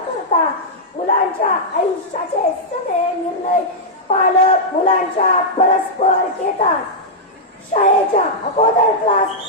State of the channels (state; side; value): normal; both; correlation -0.08